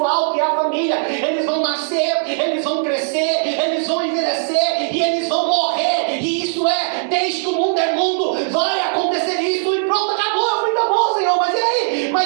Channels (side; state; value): left; silent; digital silence